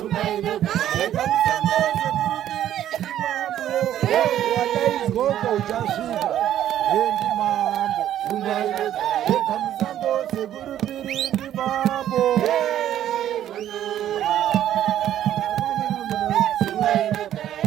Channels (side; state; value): left; quieter; 11.5 dB